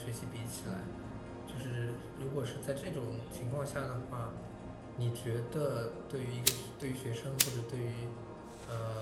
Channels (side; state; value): both; identical; correlation 1.00